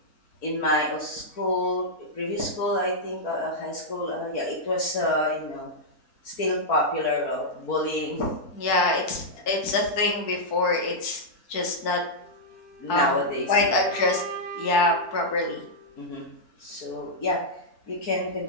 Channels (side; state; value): right; late; 4.6 ms